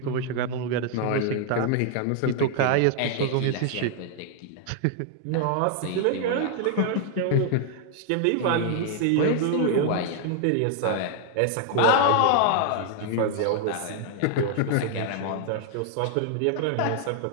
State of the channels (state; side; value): different; both; correlation 0.00